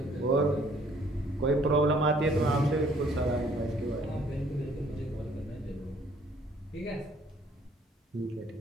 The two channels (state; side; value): normal; both; correlation 0.61